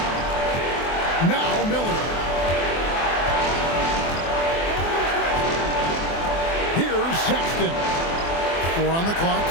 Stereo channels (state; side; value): late; right; 24 ms